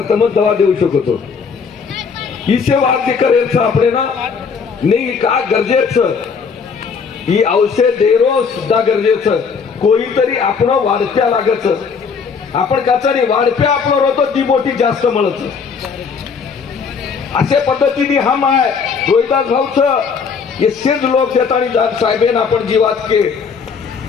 तमच दवा देऊ शकतो हिशे वाद करेल आपले ना नाही का गरजेचं ही औषध देरो सुद्धा गरजेचं कोणीतरी आपण वाढत्या लागच आपण काचारी वाढप्या आपण रोतो ती मोठी जास्त मिळत अशा पद्धतीने हम आहे रोहिदास भाऊचं येसेच लोक देतानी साहेबेन आपण जीवात के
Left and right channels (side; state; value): right; quieter; 5.8 dB